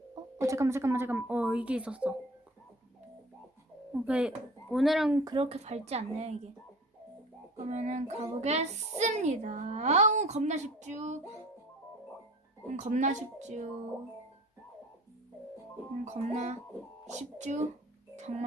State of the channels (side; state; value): both; normal; correlation 0.43